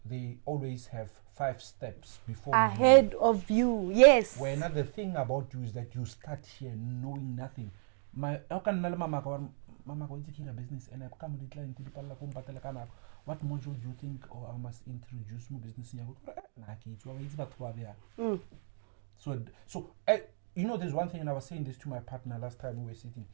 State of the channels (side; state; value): left; silent; 55 dB below the other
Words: they always have 5 steps before ahead of you. Yes. Where another thing about you is that you start here knowing nothing. How can mama go into a business and I come with the client what module do you think or I must introduce my business in so you know, there's one thing, and I was saying this to my partner last time we were sitting,